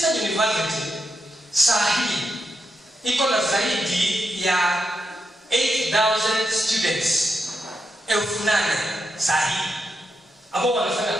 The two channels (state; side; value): normal; both; correlation 0.84